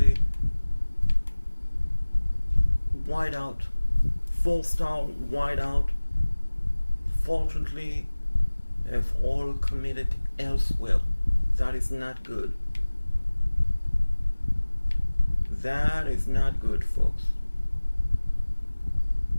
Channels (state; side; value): inverted; both; correlation -1.00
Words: wideout, 4-star wideout. Fortunately, they've all committed elsewhere. That is not good. That is not good, folks.